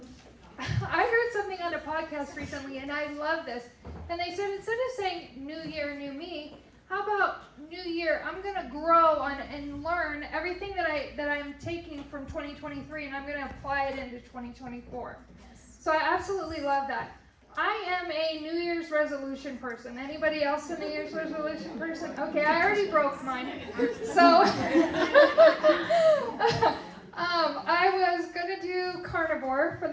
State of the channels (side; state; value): both; identical; correlation 1.00